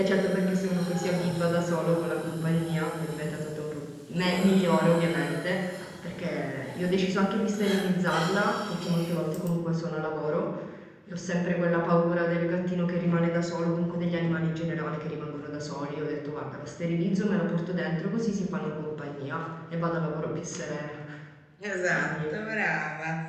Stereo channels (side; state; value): both; identical; correlation 1.00